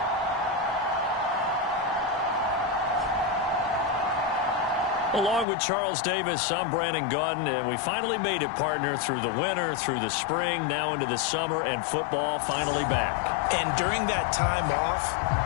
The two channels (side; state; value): right; drops out; at 5.5 s